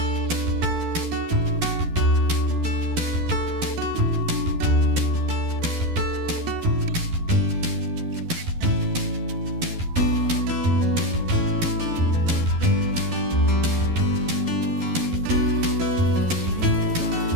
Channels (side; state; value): left; late; 12 ms